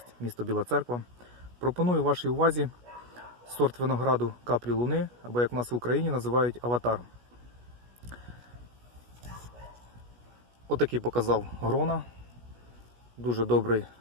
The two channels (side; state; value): left; late; 16 ms